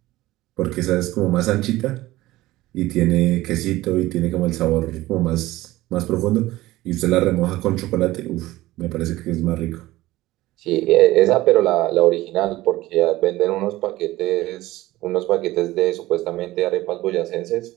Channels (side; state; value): left; quieter; 17.3 dB